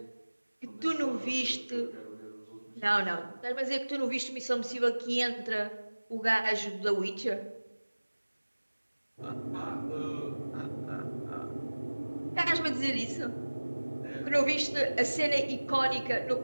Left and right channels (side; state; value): both; inverted; correlation -1.00